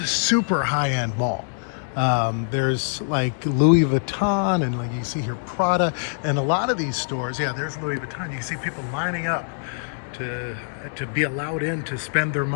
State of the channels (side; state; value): right; silent; digital silence